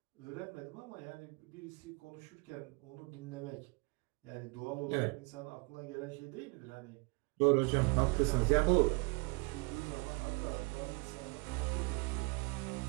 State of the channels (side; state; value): left; quieter; 30.2 dB